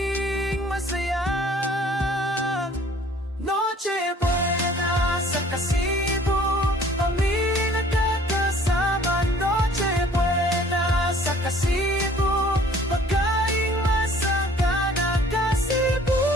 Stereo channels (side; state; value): both; normal; correlation 0.54